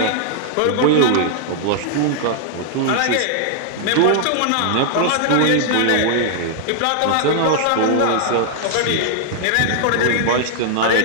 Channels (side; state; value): both; different; correlation -0.01